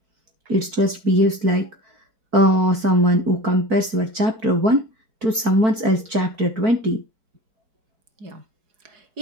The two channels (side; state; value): left; late; 4.5 ms